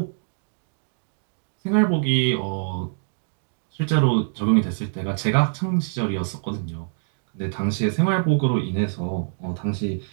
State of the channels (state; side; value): silent; left; digital silence